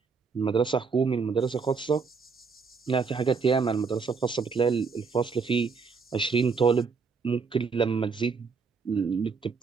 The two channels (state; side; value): quieter; left; 5.1 dB